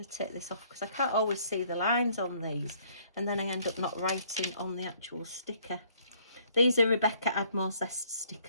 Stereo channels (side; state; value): both; inverted; correlation -0.62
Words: to take this off because I can't always see the lines on these, and then I end up not writing on the actual sticker. These are Rebecca Admore Zest